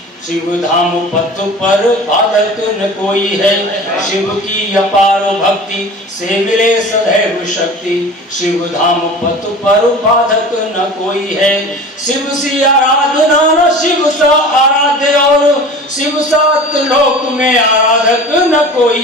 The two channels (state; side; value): normal; both; correlation 0.38